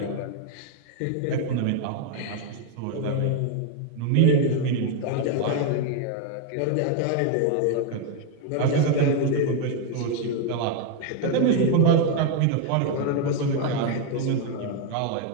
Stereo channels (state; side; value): different; both; correlation 0.01